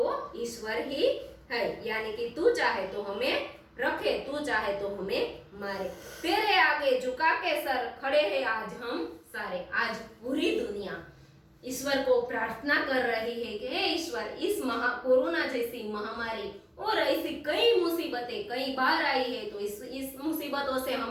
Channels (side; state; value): both; identical; correlation 1.00